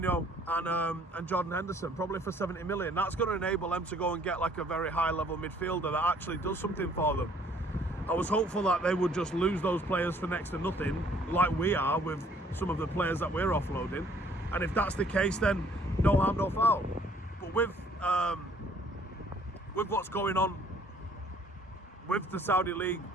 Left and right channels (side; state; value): both; normal; correlation 0.60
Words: and Jordan Henderson, probably for 70 million. That's going to enable them to go and get like a very high level midfielder that actually does something for them. I was hopeful that they would just lose those players for next to nothing, like we are with some of the players that we're offloading. And if that's the case, then no harm, no foul. But with what's going on with the Saudi League